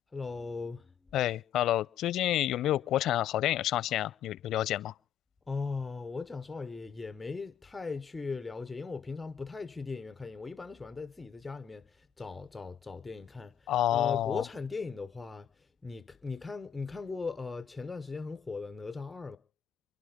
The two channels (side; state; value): right; quieter; 9.0 dB